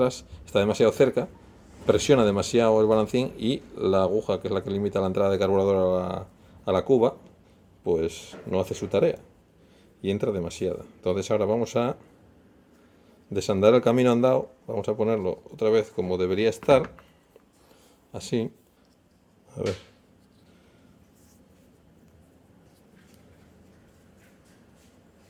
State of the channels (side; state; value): both; identical; correlation 1.00